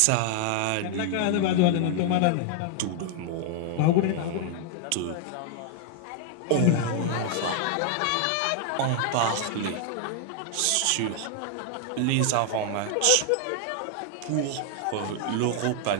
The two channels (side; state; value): both; different; correlation 0.00